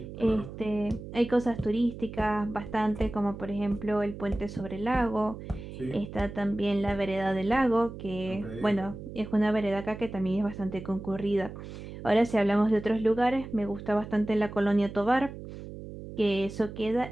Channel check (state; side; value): noise; right; hum, 11 dB below the sound